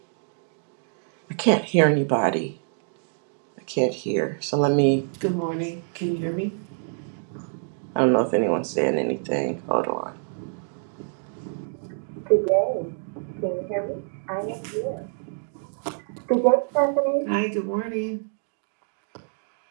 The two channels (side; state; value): left; silent; 61 dB below the other